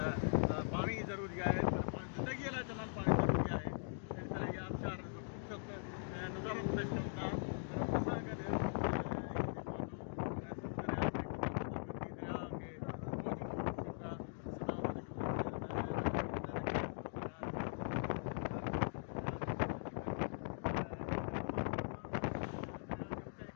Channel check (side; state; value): right; silent; digital silence